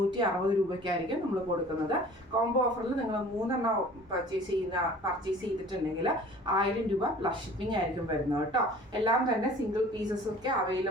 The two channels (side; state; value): both; normal; correlation 0.47